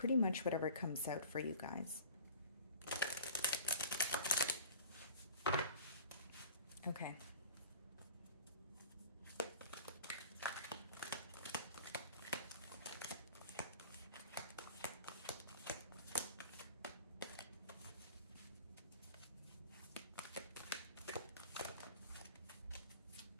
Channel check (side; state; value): both; inverted; correlation -0.41